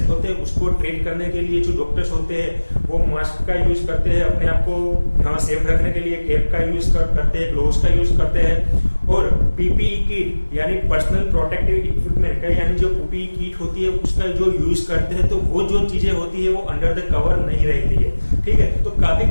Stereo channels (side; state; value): both; inverted; correlation -1.00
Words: होते हैं उसको ट्रीट करने के लिए जो डॉक्टर्स होते हैं वो मास्क का यूज करते हैं, अपने आप को सेफ रखने के लिए कैप का यूज करते हैं, ग्लोव्स का यूज करते हैं, और PPE किट यानी पर्सनल प्रोटेक्टिव इक्विपमेंट यानी जो PPE किट होती है उसका जो यूज करते हैं, तो वो जो चीजें होती है वो अंडर द कवर नहीं रहती है। ठीक है, तो काफी